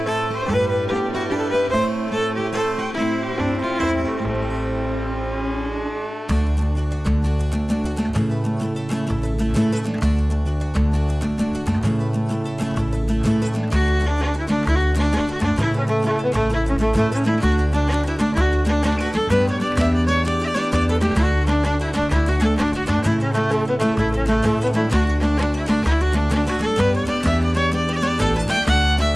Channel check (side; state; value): both; normal; correlation 0.98